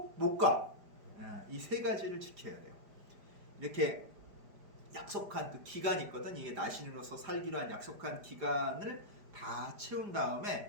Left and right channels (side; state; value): left; late; 4.9 ms